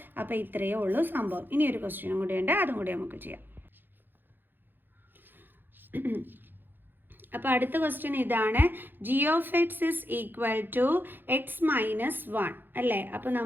അപ്പോൾ ഇത്രയേ ഉള്ളൂ സംഭവം. ഇനി ഒരു ക്വസ്റ്റ്യനും കൂടി ഉണ്ട്, അതും കൂടി നമുക്ക് ചെയ്യാം. അപ്പോൾ അടുത്ത ക്വസ്റ്റ്യൻ ഇതാണ്. G of x is equal to x minus 1 അല്ലേ? അപ്പോൾ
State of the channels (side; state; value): left; late; 0.095 ms